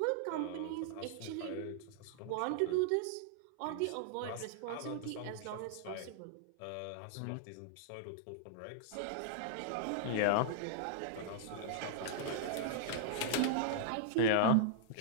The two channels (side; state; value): both; different; correlation -0.01